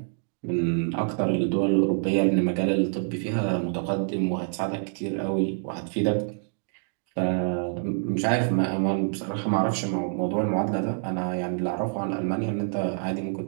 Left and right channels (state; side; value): silent; left; digital silence